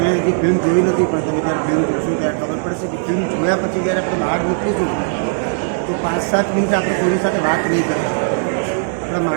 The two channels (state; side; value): silent; left; 67 dB below the other